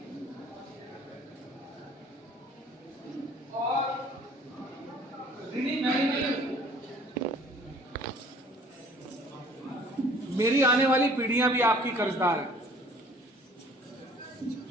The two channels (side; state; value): both; normal; correlation 0.53